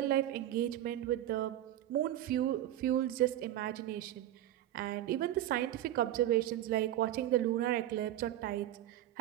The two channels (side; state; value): left; quieter; 13.0 dB